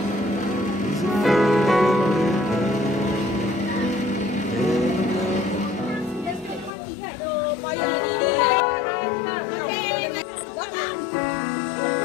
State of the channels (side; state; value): right; drops out; at 6.7 s